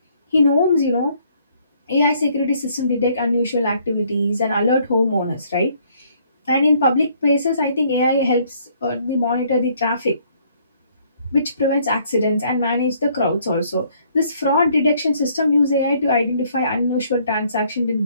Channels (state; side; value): inverted; both; correlation -0.65